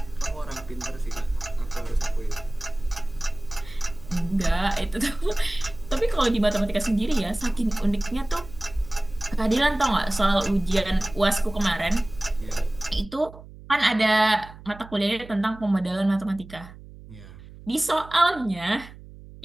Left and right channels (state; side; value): noise; right; hum, 18 dB below the sound